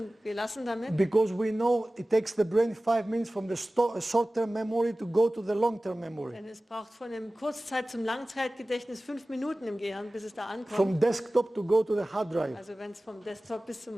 gelassen damit, because we know it takes the brain 5 minutes from the short-term memory to go to the long-term memory. denn es braucht von dem Kurzzeit- zum Langzeitgedächtnis 5 Minuten im Gehirn, bis es da ankommt. From desktop to go to the hard drive. Also wenn es vom Desktop bis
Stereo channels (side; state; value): both; normal; correlation 0.97